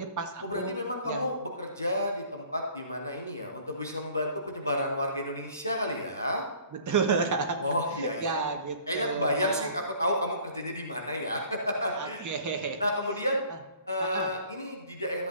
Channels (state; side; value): inverted; both; correlation -0.52